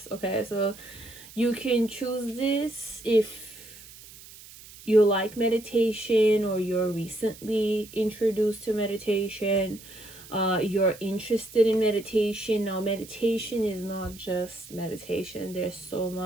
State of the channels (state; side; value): noise; right; hiss, 19 dB below the sound